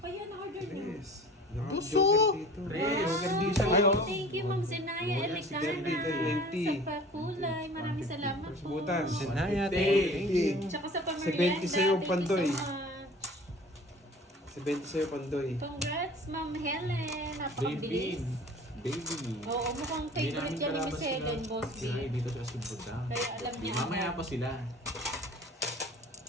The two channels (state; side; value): normal; both; correlation 0.44